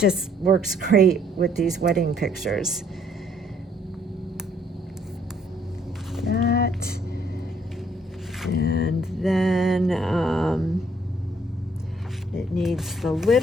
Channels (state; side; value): normal; both; correlation 0.65